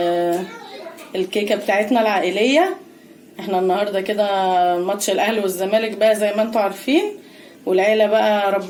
الكيكه بتاعتنا العائليه. احنا النهارده كده ماتش الاهلي والزمالك بقى زي ما انتم عارفين، والعيله بقى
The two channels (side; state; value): both; identical; correlation 1.00